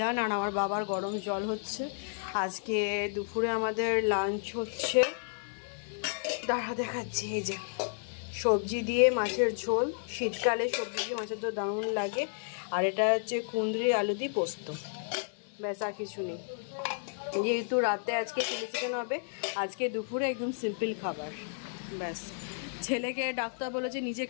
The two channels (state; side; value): silent; right; digital silence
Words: আর আমার বাবার গরম জল হচ্ছে। আজকে দুপুরে আমাদের লাঞ্চ হচ্ছে, দাঁড়া দেখাচ্ছি, এই যে সবজি দিয়ে মাছের ঝোল, শীতকালে সবজি দিয়ে মাছের ঝোল দারুণ লাগে। আর এটা হচ্ছে কুঁদরি আলু দিয়ে পোস্ত, ব্যাস আর কিছু নেই। যেহেতু রাতে আজকে চিলি চিকেন হবে, আজকে দুপুরে একদম সিম্পল খাবার, ব্যাস। ছেলেকে ডাক্তার বলেছে নিজে